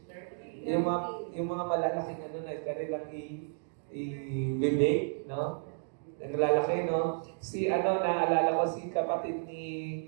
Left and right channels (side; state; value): left; silent; digital silence